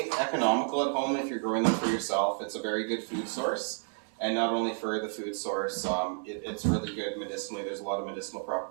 economical at home if you're growing them for yourself. It's a very good food source. And not only for the food source, it's really good medicinally. There's a lot of medicinal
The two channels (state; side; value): silent; left; 57 dB below the other